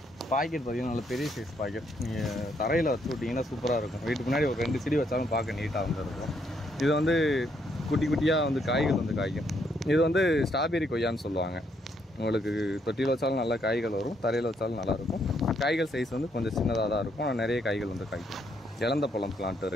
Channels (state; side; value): normal; both; correlation 0.73